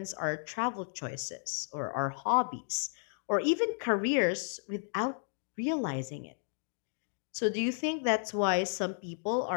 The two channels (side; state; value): right; silent; digital silence